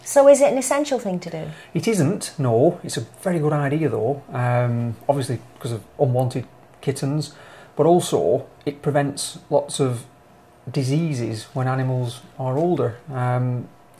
So is it an essential thing to do? It isn't, no. It's a very good idea though, obviously because of unwanted kittens, but also it prevents lots of diseases when animals are older,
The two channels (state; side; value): identical; both; correlation 1.00